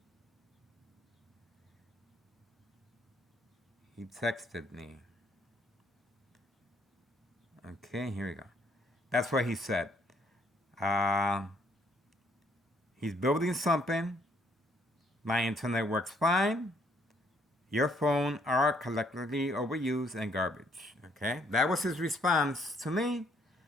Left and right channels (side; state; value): both; normal; correlation 0.67